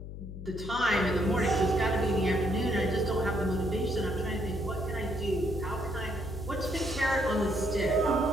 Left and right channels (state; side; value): noise; left; hum, 10 dB below the sound